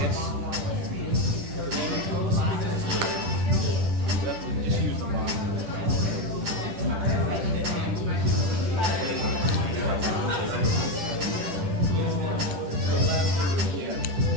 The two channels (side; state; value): left; late; 10 ms